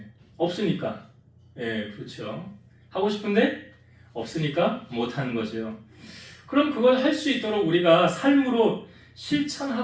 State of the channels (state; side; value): identical; both; correlation 1.00